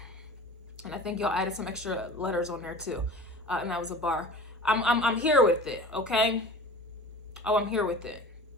And I think y'all added some extra letters on there too. And that was a bar. I'm here with it, okay? Oh, I'm here with it.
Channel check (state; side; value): normal; both; correlation 0.39